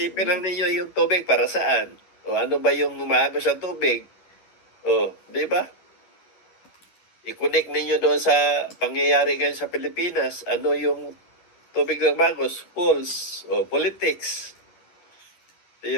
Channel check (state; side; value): late; right; 11 ms